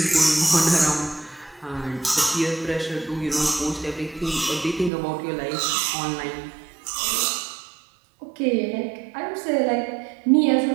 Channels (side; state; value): left; drops out; at 4.9 s